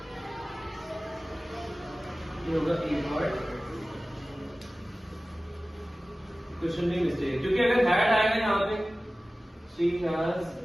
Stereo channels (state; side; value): normal; both; correlation 0.97